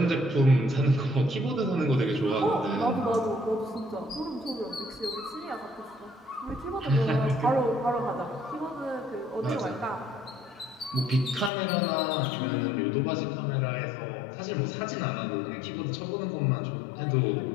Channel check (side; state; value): right; drops out; at 11.5 s